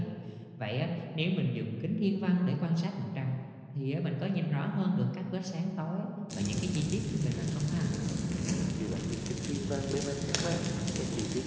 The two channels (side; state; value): both; identical; correlation 1.00